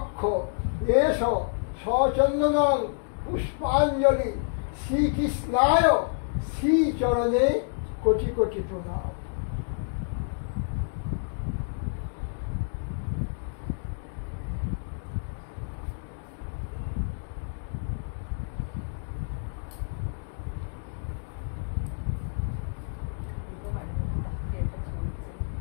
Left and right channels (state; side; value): silent; right; digital silence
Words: এষ সচন্দনং পুষ্পাঞ্জলি শ্রীকৃষ্ণায় শ্রীচরণে কোটি কোটি প্রণাম।